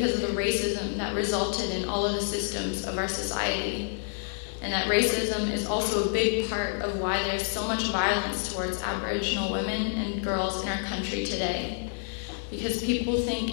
of the racism that resulted in all of the systems of our society. And that racism is also a big part of why there's so much violence towards Aboriginal women and girls in our country today. Because people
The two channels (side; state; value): right; silent; 59 dB below the other